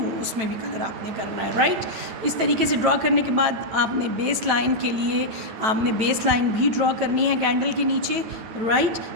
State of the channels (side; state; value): left; late; 9.0 ms